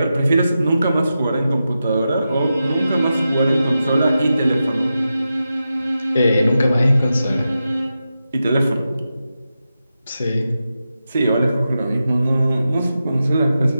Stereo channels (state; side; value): inverted; both; correlation -0.90